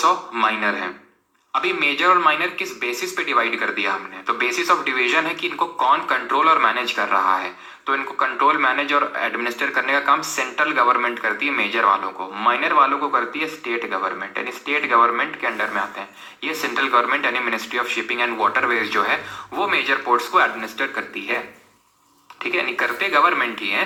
माइनर है। अभी मेजर और माइनर किस बेसिस पे डिवाइड कर दिया हमने? तो बेसिस ऑफ डिवीजन है कि इनको कौन कंट्रोल और मैनेज कर रहा है। तो इनको कंट्रोल, मैनेज और एडमिनिस्टर करने का काम सेंट्रल गवर्नमेंट करती है मेजर वालों को, माइनर वालों को करती है स्टेट गवर्नमेंट, यानी स्टेट गवर्नमेंट के अंडर में आते हैं। ये सेंट्रल गवर्नमेंट यानी ministry of shipping and waterways जो है वो मेजर पोर्ट्स को एडमिनिस्टर करती है, ठीक है, यानी करते गवर्नमेंट ही है।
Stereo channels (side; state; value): both; identical; correlation 1.00